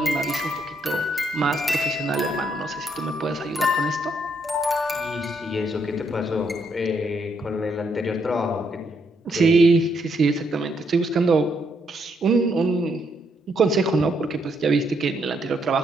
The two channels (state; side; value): normal; both; correlation 0.75